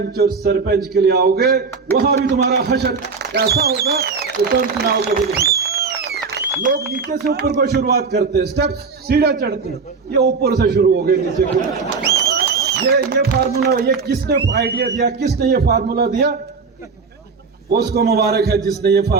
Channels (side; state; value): left; quieter; 4.9 dB